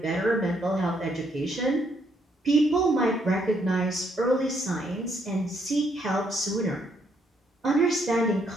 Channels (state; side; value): normal; both; correlation 0.72